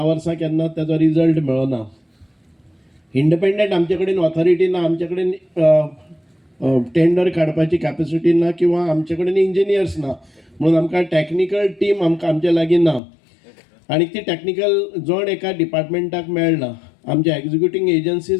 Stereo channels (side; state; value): right; drops out; at 13.0 s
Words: वर्सां केन्ना ताचो रिजल्ट मेळना. इंडिपेंडंट आमचे कडेन ऑथॉरिटी ना, आमचे कडेन टेंडर काडपाची कॅपेसिटी ना किंवा आमचे कडेन इंजिनियर्स ना. म्हणून आमकां टॅक्निकल टीम आमचे लागीं ना आनी ती टॅक्निकल जण एका डिपार्टमेंटाक मेळना. आमचे एग्जिक्युटींग